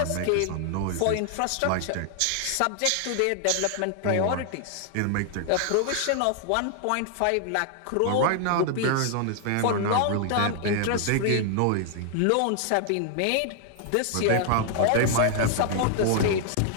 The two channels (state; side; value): different; both; correlation 0.00